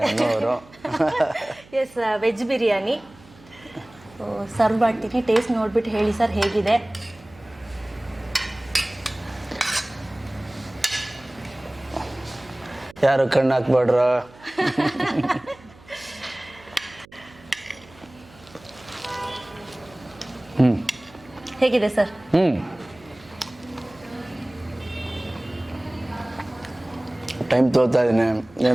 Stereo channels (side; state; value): right; noise; hum, 24 dB below the sound